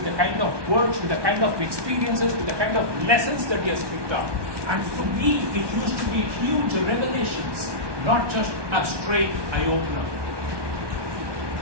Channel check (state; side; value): late; left; 1.2 ms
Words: the kind of words, with the kind of experiences, with the kind of lessons that he has picked up. And for me, it used to be huge revelations, not just a straight eye-opener.